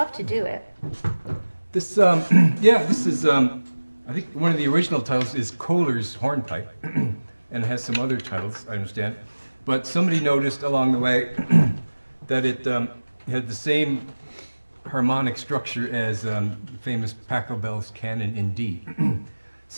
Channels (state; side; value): inverted; both; correlation -1.00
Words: to do it. This, this is, I think one of the original titles is Kohler's Hornpipe, and it has some other titles, I understand. But somebody noticed along the way that it had the same harmonic structure as the famous Pachelbel's canon in D.